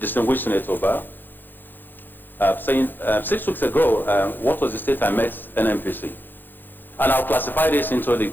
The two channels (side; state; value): right; late; 0.091 ms